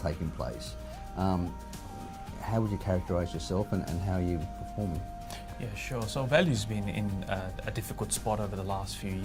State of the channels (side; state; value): both; identical; correlation 1.00